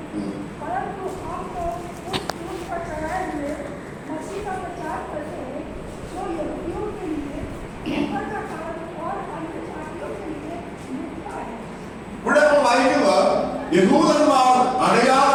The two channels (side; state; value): both; identical; correlation 1.00